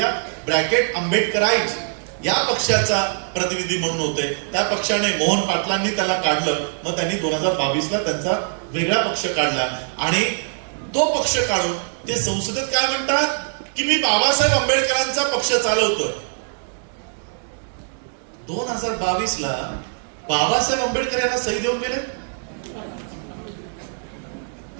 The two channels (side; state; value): left; silent; digital silence